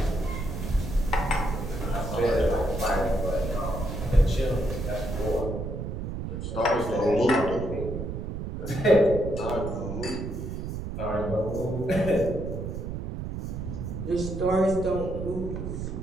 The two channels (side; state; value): right; noise; rumble, 5 dB below the sound